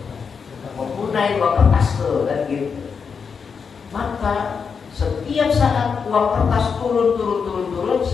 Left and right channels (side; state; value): right; quieter; 5.9 dB